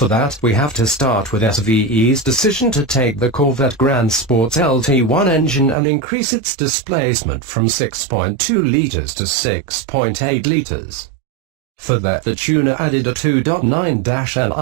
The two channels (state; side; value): drops out; left; at 5.8 s